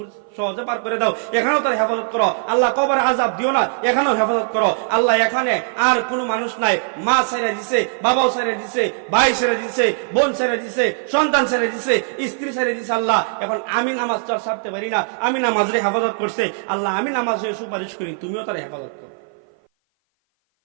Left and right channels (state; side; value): silent; left; 56 dB below the other